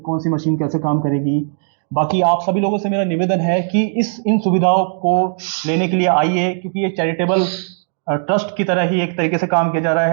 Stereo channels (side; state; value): left; silent; 65 dB below the other